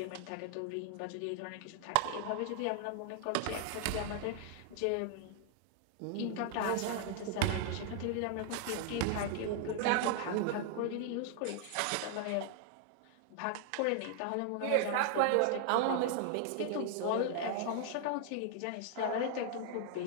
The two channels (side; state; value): both; different; correlation 0.00